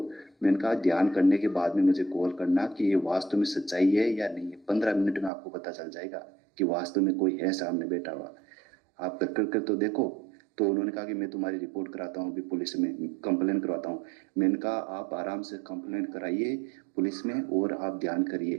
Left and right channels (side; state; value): left; drops out; at 5.3 s